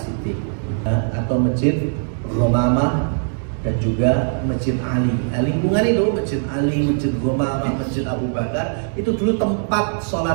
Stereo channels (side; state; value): left; silent; digital silence